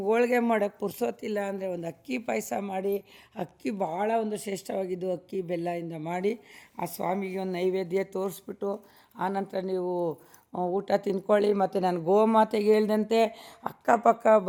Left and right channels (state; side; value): identical; both; correlation 1.00